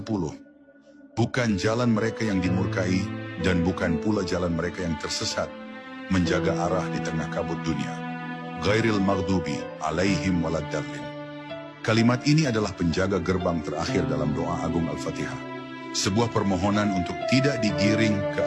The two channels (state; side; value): identical; both; correlation 1.00